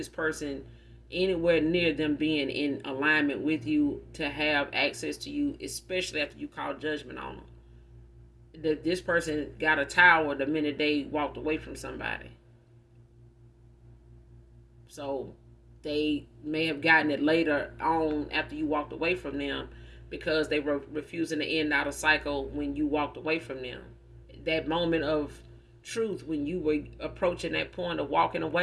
person anywhere near them being in alignment with you to have access to you, especially after you call judgment on them. This person got a tower the minute they walked away from somebody. So they may have gotten it later on after you walked away from them, because they were refusing to end out a cycle when you walked away from them. That moment of truth, when you were approaching that point of walking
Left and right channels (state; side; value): identical; both; correlation 1.00